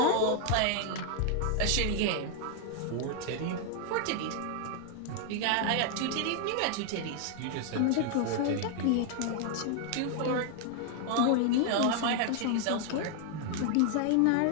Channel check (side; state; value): both; different; correlation 0.00